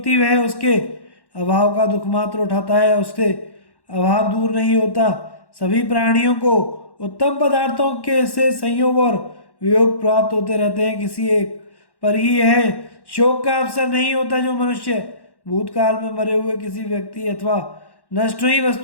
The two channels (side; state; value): right; late; 1.1 ms